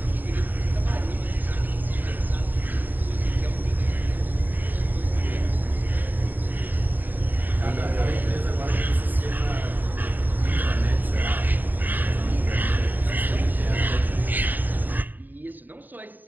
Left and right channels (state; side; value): late; left; 0.088 ms